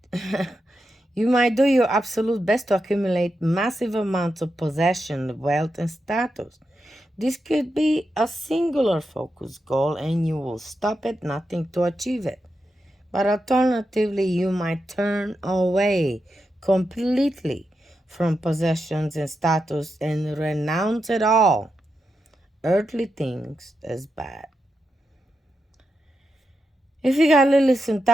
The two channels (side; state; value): both; normal; correlation 0.87